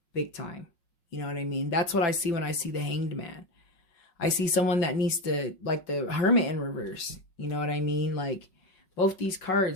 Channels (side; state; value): right; late; 5.5 ms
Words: Big time. You know what I mean? That's what I see when I see the Hanged Man. I see someone that needs to, like the Hermit in reverse. You know what I mean? Like both these